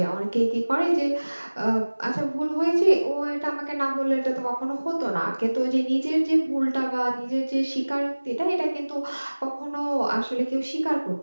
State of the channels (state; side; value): inverted; both; correlation -1.00